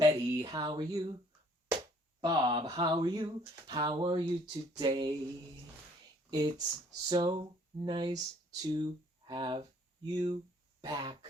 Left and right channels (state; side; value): normal; both; correlation 0.60